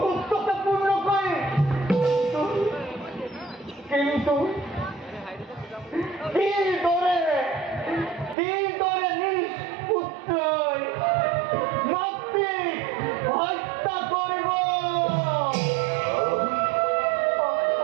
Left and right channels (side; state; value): left; drops out; at 8.3 s